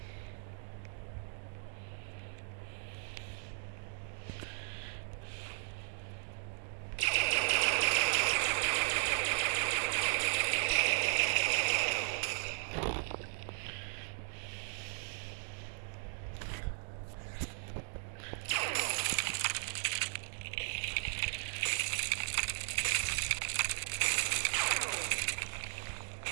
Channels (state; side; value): silent; left; digital silence